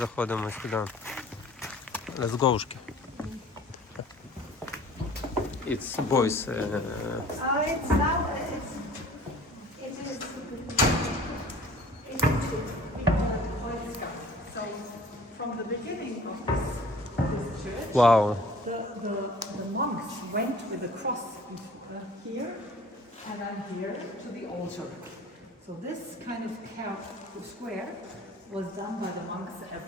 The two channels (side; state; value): both; normal; correlation 0.49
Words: сюди. Let's go. It's boys. It's now, it is we call it Boy Scout. So from the beginning of this church, Wow. the monks went with the cross here and then here to the altar. So this kind of square was done by the monks